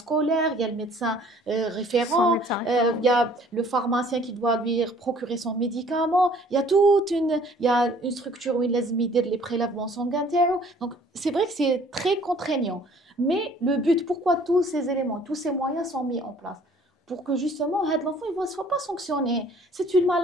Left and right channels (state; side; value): normal; both; correlation 0.55